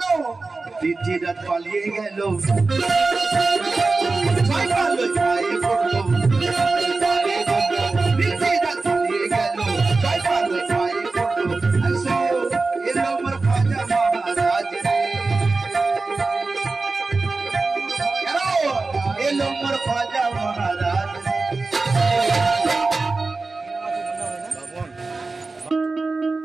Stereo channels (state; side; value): quieter; left; 3.7 dB